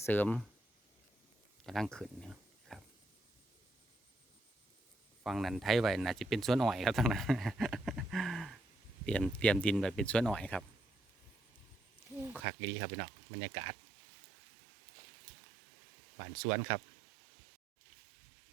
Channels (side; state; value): left; drops out; at 12.5 s